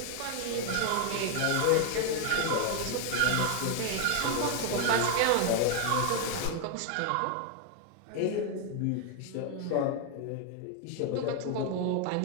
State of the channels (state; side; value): different; both; correlation 0.01